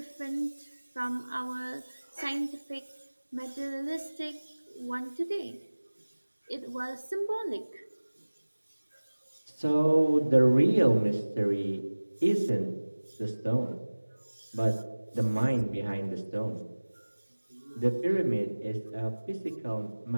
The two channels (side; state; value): both; inverted; correlation -1.00